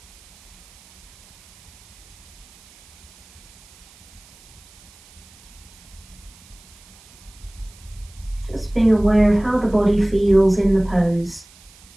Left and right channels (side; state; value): right; noise; hiss, 25 dB below the sound